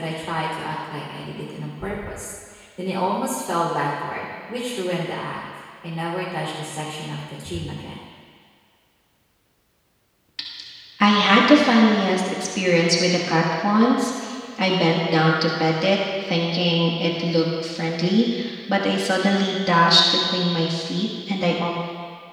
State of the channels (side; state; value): both; identical; correlation 1.00